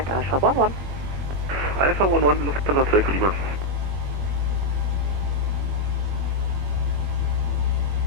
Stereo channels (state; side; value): late; left; 21 ms